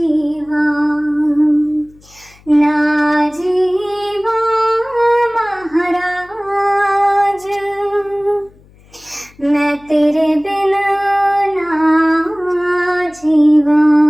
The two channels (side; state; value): left; noise; hum, 28 dB below the sound